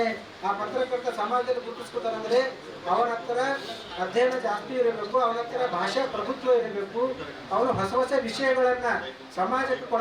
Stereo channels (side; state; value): both; identical; correlation 1.00